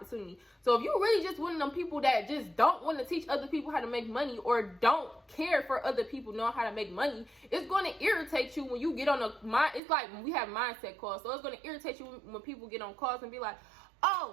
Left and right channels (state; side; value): drops out; left; at 9.8 s